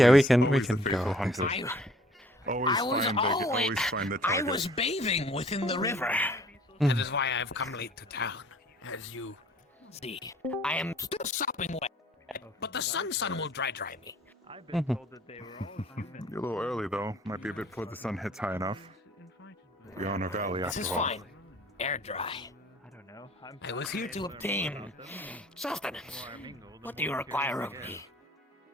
we can always the go. faithful hunter. Always find the I target. was bathing within the river. Mm. That is why I've come late to town. As you see, I am still sopping wet, but the sun will dry me. I've been told that they were all human. You're a little early though. Might be a bit before the sun hits high enough. We're on a valley This after is all. fine. Air dry. I don't know. I was here to obtain sustenance. What do you require of me?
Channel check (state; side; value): normal; both; correlation 0.55